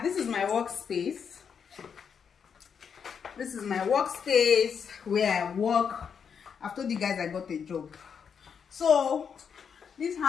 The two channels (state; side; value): quieter; right; 6.9 dB